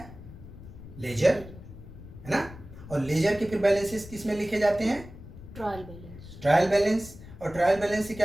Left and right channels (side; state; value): left; noise; rumble, 15 dB below the sound